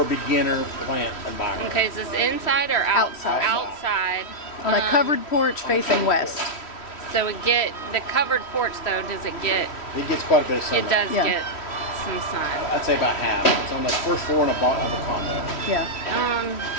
a beginner plant environment? Okay, is this inside or outside? Outside. On a covered porch facing west. So it get the covered porch though. Does it get? It gets quite a bit of sunlight. It does Yeah. get some sun. I'd say about half. It's on the first floor and a bottom of a condo. Yeah.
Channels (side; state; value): right; late; 3.1 ms